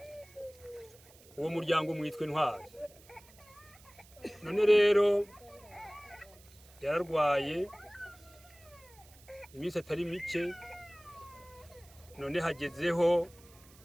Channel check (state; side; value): noise; right; hiss, 24 dB below the sound